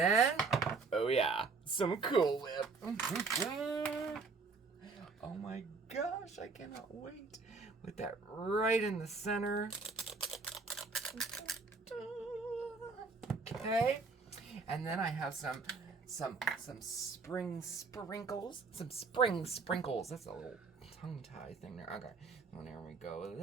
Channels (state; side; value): quieter; left; 4.4 dB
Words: oh yeah, some Cool Whip. Oh my gosh, I cannot wait. With that right in the center. Okay. And then I have some spring sprinkles. Some spring sprinkles. That's a little tongue tie thing there. Okay. Well, there we go